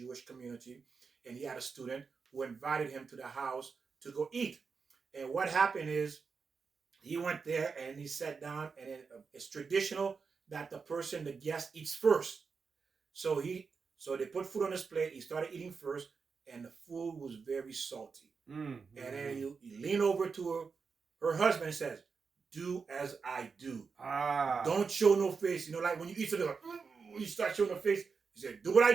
community, and he had a student who invited him to the house to go eat. And what happened is he went there and he sat down, and it's traditional that the guest, eats first. So so they put food on his plate. He started eating first, and the food was very salty. And then he leaned over to her husband and says, "Do as I do. Don't show no face. You know, like when you eat something, like, you start showing the face." He said, "Do what I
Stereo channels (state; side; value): quieter; left; 5.2 dB